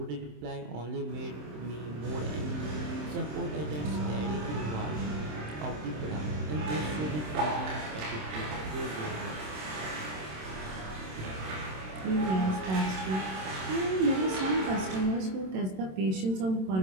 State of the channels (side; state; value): left; late; 27 ms